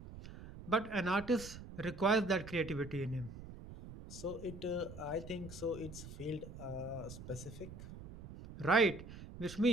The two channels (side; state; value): right; noise; rumble, 13 dB below the sound